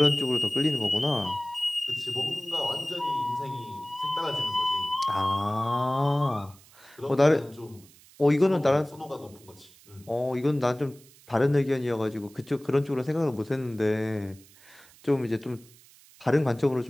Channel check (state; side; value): noise; right; hiss, 25 dB below the sound